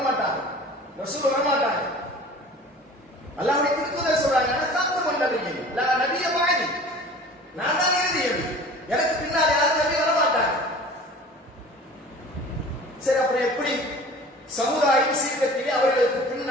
ரசூல் வரமாட்டாங்க. அல்லாஹ்வுடைய திருத்தூதர் சொல்றாங்க, ஹாத்தமன் நபி லா நபிய பாதி, நான் தான் இறுதி நபி, எனக்கு பின்னால் யாரும் நபி வரமாட்டாங்க. சரி, அப்புறம் எப்படி சமுதாயம் சீர்கத்திலே அவர்களுக்கு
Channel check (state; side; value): normal; both; correlation 0.43